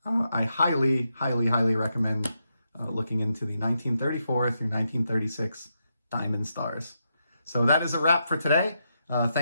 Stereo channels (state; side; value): inverted; both; correlation -0.83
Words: I highly, highly, highly recommend looking into the 1934 through 1936 Diamond Stars. So that is a wrap for today.